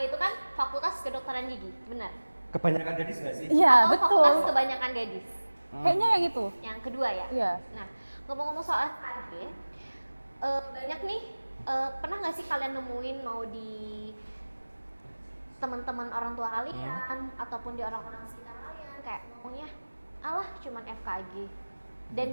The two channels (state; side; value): inverted; both; correlation -1.00